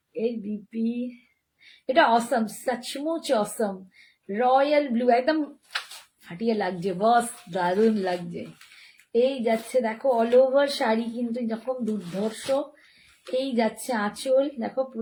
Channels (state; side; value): identical; both; correlation 1.00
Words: এর বিপি এটা অসম, সচমুচ অসম। রয়্যাল ব্লু একদম ফাটিয়ে লাগছে, বস দারুণ লাগছে। এই যাচ্ছে দেখো অল ওভার শাড়ি কিন্তু এরকম দুর্ধর্ষ। এই যাচ্ছে আঁচল, দেখো